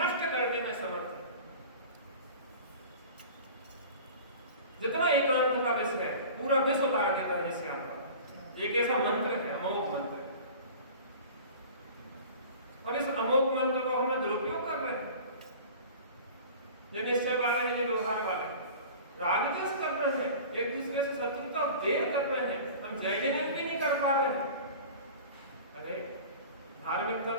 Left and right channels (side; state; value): both; inverted; correlation -0.40